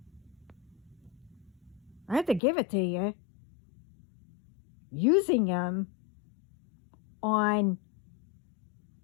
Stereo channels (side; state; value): right; drops out; at 2.4 s